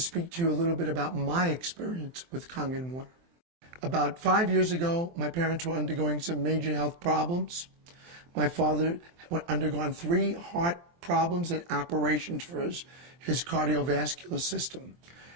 to you a little bit about my experience with Kangen water. About 5 years ago, my parents were undergoing some major health problems. My father had undergone 3 heart problems and operations for his cardiovascular system.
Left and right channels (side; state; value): left; late; 23 ms